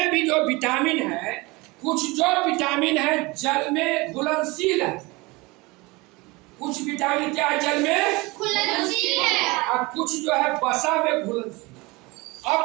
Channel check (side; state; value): left; quieter; 24.0 dB